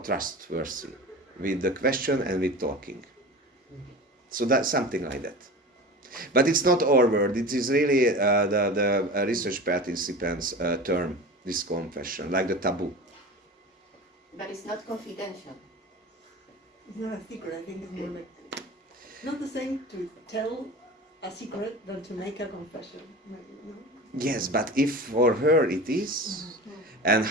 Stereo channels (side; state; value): both; normal; correlation 0.33